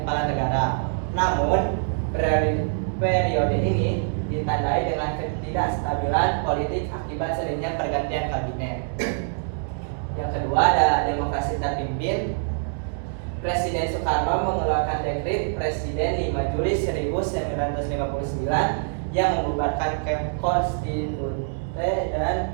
kepala negara. Namun periode ini ditandai dengan ketidakstabilan politik akibat seringnya pergantian kabinet. Yang kedua ada demokrasi terpimpin. Presiden Soekarno mengeluarkan dekret Presiden 5 Juli 1959 yang membubarkan konstitusi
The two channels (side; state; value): left; silent; digital silence